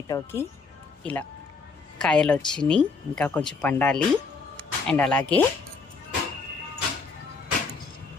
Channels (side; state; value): right; quieter; 4.5 dB